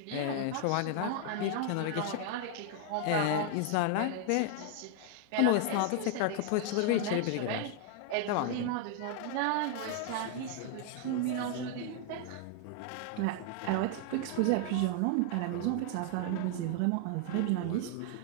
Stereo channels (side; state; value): both; different; correlation 0.00